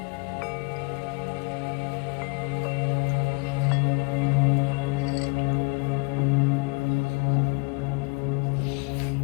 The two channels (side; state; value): right; quieter; 31.0 dB